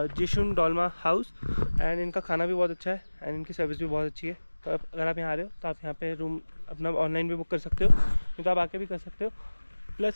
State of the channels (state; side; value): inverted; both; correlation -1.00